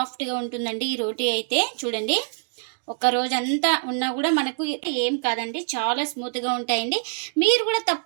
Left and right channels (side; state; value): left; silent; digital silence